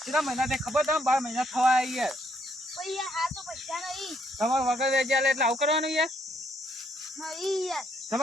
કેટલા મહિના તે ખબર તમે 12 મહિના થવા યાર તમારે વગર વેચ્યા એટલે આવું કરવાનું યાર.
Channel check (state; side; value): normal; both; correlation 0.71